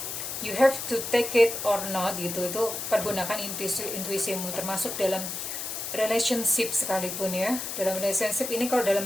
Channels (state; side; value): noise; left; hiss, 5 dB below the sound